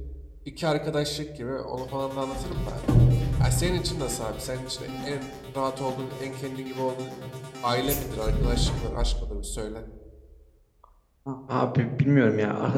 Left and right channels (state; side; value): identical; both; correlation 1.00